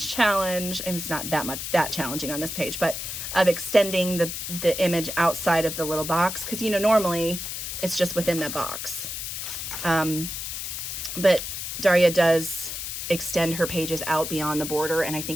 and it's not that challenging on this page, but of extending the image outside of the little box. Cause you know, normally it's just within the box. But Daria does extend her pages out beyond the border, and I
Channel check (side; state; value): left; noise; hiss, 5 dB below the sound